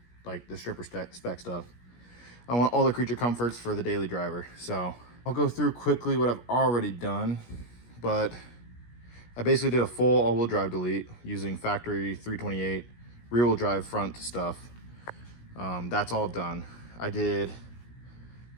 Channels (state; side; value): late; right; 17 ms